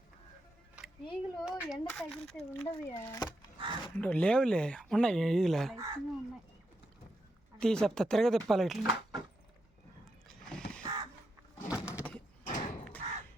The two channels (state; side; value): normal; both; correlation 0.84